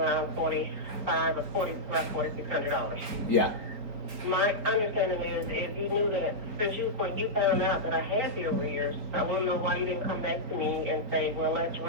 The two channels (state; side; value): late; left; 4.4 ms